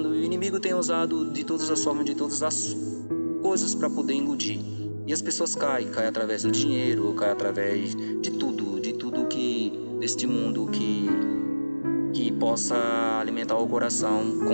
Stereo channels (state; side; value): inverted; both; correlation -1.00